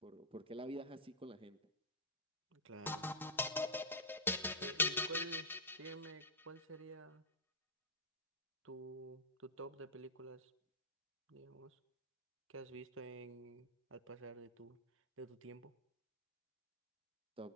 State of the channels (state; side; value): normal; both; correlation -0.15